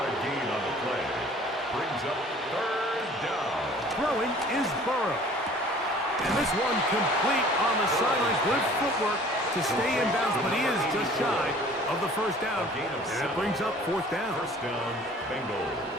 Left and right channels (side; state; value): both; normal; correlation 0.50